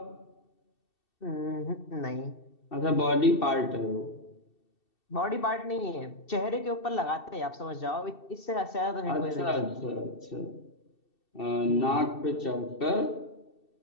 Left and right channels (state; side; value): late; right; 2.7 ms